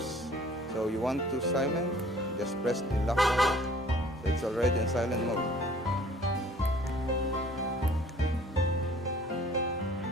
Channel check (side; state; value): both; normal; correlation 0.53